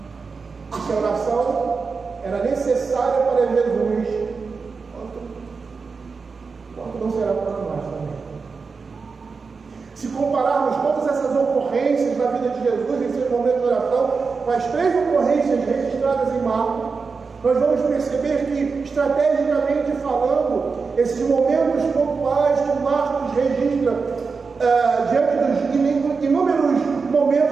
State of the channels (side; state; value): left; quieter; 4.8 dB